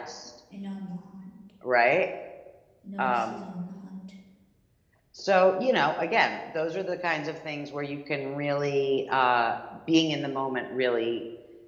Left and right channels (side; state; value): both; identical; correlation 1.00